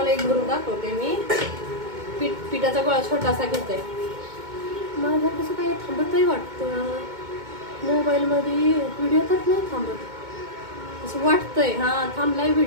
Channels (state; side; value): late; left; 2.2 ms